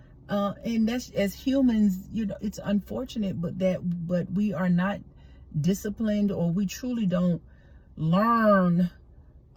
that's, as humans, it's unfortunate, but we are not disciplined, or we truly don't learn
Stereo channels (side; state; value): both; identical; correlation 1.00